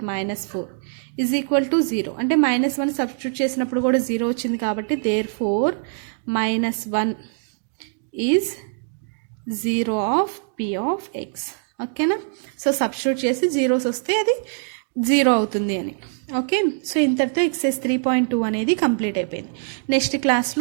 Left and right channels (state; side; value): silent; left; digital silence